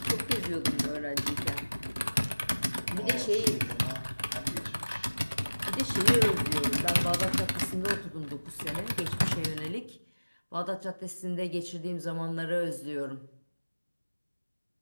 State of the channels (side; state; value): both; inverted; correlation -1.00